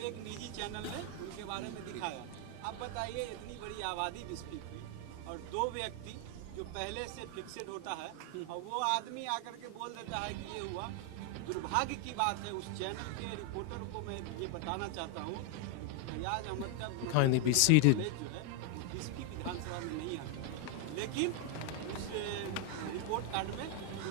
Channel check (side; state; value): both; different; correlation 0.00